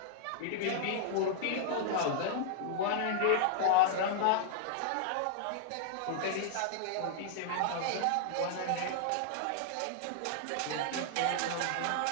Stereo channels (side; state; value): both; different; correlation -0.01